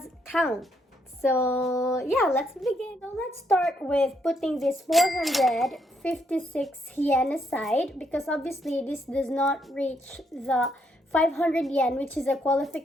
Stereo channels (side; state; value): both; normal; correlation 0.75